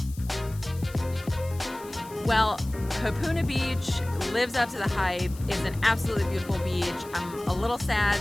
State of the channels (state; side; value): noise; left; hiss, 20 dB below the sound